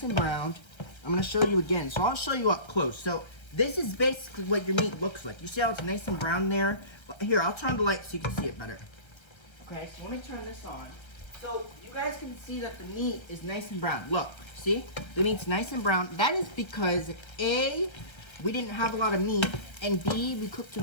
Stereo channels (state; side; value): late; right; 1.3 ms